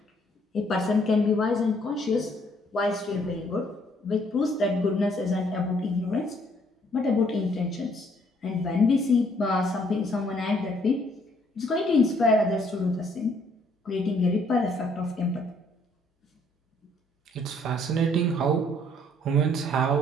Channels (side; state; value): both; normal; correlation 0.65